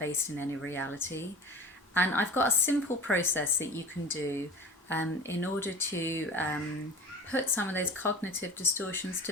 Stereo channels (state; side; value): normal; both; correlation 0.36